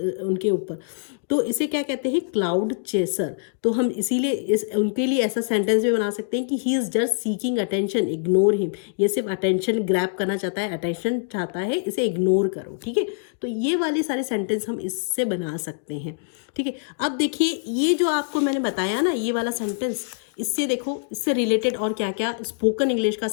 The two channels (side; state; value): right; silent; digital silence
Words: उनके ऊपर। तो इसे क्या कहते हैं? Cloud chaser. तो हम इसीलिए उनके लिए ऐसा सेंटेंस भी बना सकते हैं कि he is just seeking attention, ignore him. ये सिर्फ अटेंशन ग्रैब करना चाहता है, अटेंशन चाहता है, इसे इग्नोर करो, ठीक है। तो ये वाले सारे सेंटेंस हम इससे बना सकते हैं, ठीक है। अब देखिए ये जो आपको मैंने बताया ना, ये वाला सेंटेंस, इससे देखो इससे रिलेटेड और क्या क्या स्पोकन इंग्लिश का